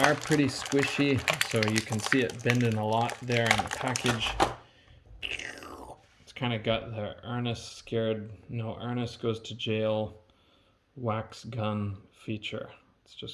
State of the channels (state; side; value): identical; both; correlation 1.00